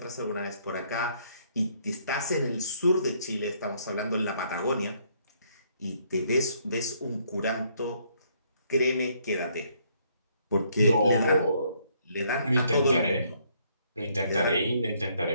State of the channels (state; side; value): inverted; both; correlation -0.68